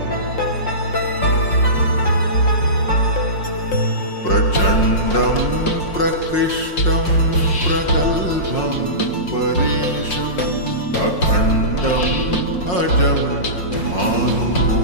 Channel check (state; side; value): late; right; 5.6 ms